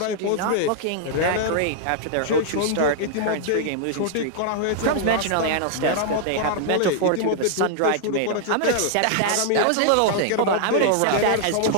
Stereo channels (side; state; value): both; different; correlation -0.01